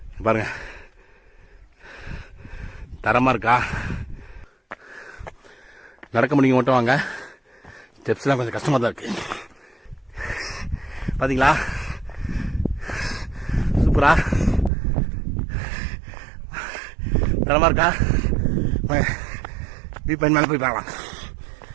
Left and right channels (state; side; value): drops out; left; at 14.7 s